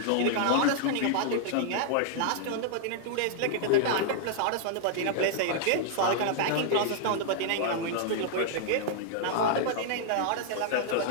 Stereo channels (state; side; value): different; both; correlation -0.01